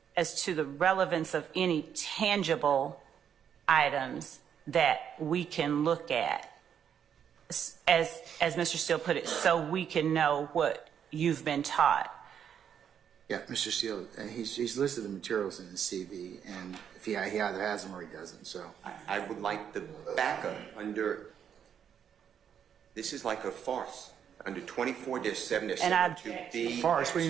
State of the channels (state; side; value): quieter; left; 8.4 dB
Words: the relevance of any tangible items that we can look at, as Mr. Steele put it, so we can know what you've been taught. Yeah, Mr. Steele, he's listed the materials in his CV, and if he either has them or he doesn't. So I would like the backup under, this is like a farce, under 24-7, And I 7.2b. farce,